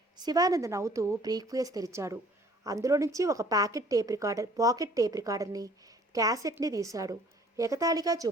శివానంద్ నవ్వుతూ బ్రీఫ్ కేస్ తెరిచాడు. అందులో నుంచి ఒక పాకెట్ టేప్ రికార్డర్ని, క్యాసెట్ని తీశాడు. ఎగతాళిగా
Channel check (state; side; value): normal; both; correlation 0.55